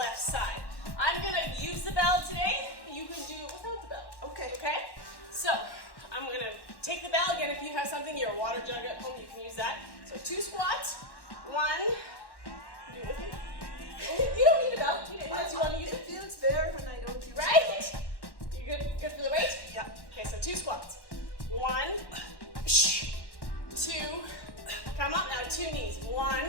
side. I'm gonna use the bell today. You can do it without the bell. Okay. Okay? So, I'm gonna take the bell again. If you have something, your water jug at home, you can use that. So 2 squats, 1, do it with me. You don't need a bell, unless you want to use it. It feels better when I don't use it. Right? You good for the weight? Yeah. Okay, so 2 squats. 1, 2, come up now, 2 knees.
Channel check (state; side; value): late; right; 1.1 ms